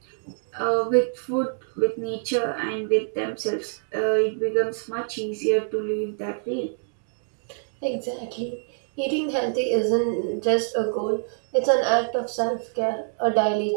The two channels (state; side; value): silent; left; digital silence